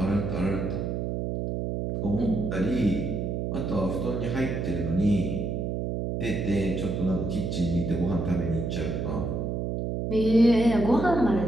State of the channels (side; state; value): right; noise; hum, 2 dB below the sound